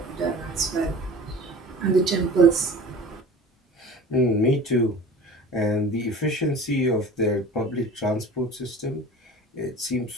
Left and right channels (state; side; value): normal; both; correlation 0.40